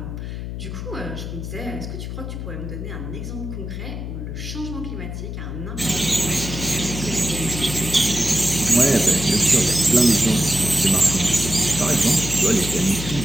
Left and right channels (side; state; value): left; noise; hum, 7 dB below the sound